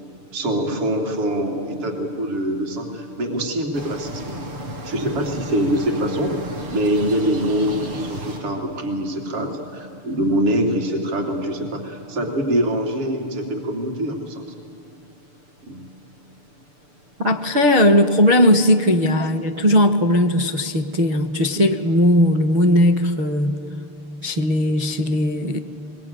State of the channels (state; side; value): late; left; 6.8 ms